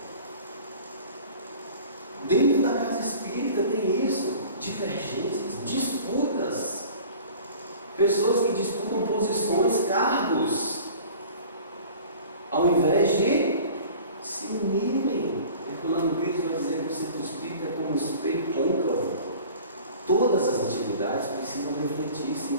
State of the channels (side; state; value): both; inverted; correlation -0.44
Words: Dentro da casa espírita tem isso: divergências, disputas. Pessoas que disputam posições, cargos, ao invés de se unirem. Herculano Pires vai dizer que o centro espírita é como um espelho côncavo. Todas as atividades precisam refletir-se